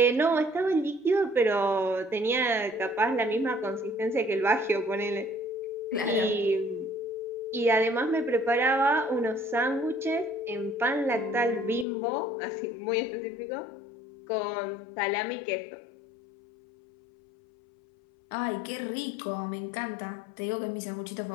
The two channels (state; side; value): drops out; right; at 11.9 s